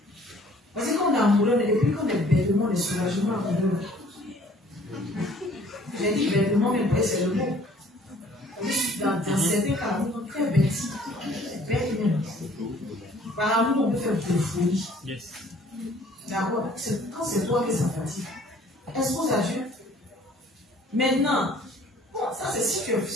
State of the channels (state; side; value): normal; both; correlation 0.55